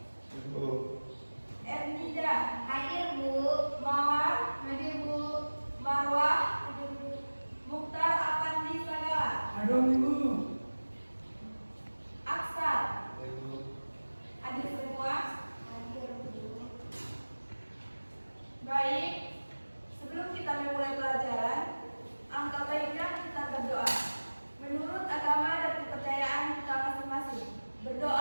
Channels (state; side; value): inverted; both; correlation -1.00